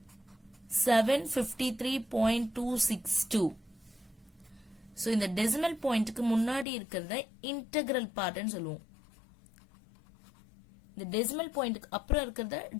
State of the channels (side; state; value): right; drops out; at 6.7 s